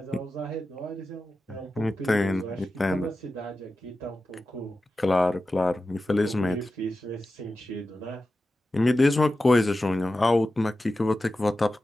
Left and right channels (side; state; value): both; normal; correlation 0.93